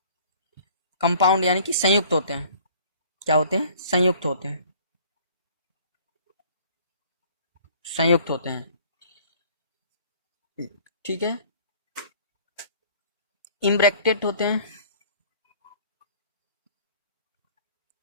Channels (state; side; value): inverted; both; correlation -0.53